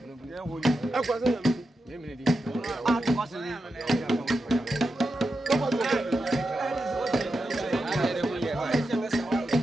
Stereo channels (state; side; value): normal; both; correlation 0.88